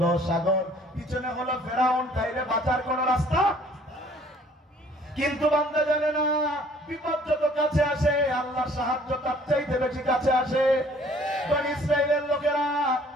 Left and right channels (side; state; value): both; normal; correlation 0.56